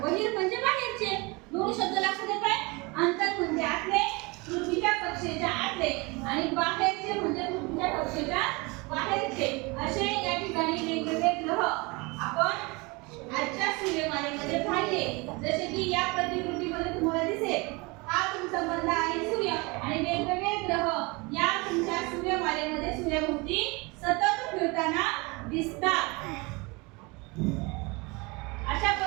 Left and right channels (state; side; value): quieter; left; 26.6 dB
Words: बहिर म्हणजे बाहेरचे. दोन शब्द लक्षात येत आहे. अंतर म्हणजे आतले, पृथ्वीच्या कक्षेच्या आतले आणि बाहेरचे म्हणजे पृथ्वीच्या कक्षेच्या बाहेरचे. असे या ठिकाणी वेगवेगळे ग्रह आपण आजच्या सूर्यमालेमध्ये पाहिले. जसे की या प्रतिकृतीमध्ये तुम्हाला दिसेल हा तुमचा बंध आहे सूर्य आणि वेगवेगळे ग्रह या तुमच्या सूर्यमालेमध्ये सूर्याभोवती सतत फिरताना दिसतात. अशा